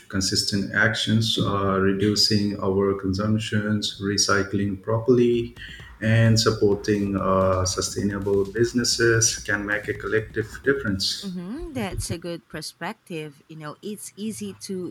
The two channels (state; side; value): identical; both; correlation 1.00